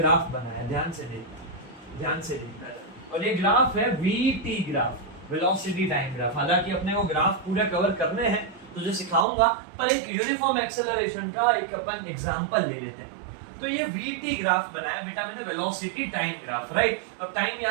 बनाया, ध्यान से देखना है, और ये ग्राफ है VT graph, velocity time graph. हालांकि अपने वो ग्राफ पूरा कवर करने हैं, तुझे सिखाऊंगा, पर एक यूनिफॉर्म एक्सेलरेशन का एक अपन एग्जांपल ले लेते हैं। तो ये वीटी ग्राफ बनाया बेटा मैंने, वेलोसिटी टाइम ग्राफ राइट। अब टाइम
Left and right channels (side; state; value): left; drops out; at 9.2 s